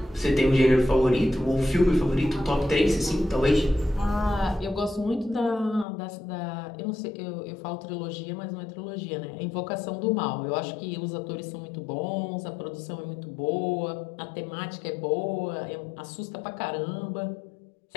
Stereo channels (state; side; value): drops out; right; at 5.9 s